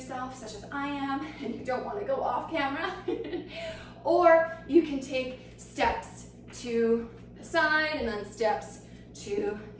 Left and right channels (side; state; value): both; identical; correlation 1.00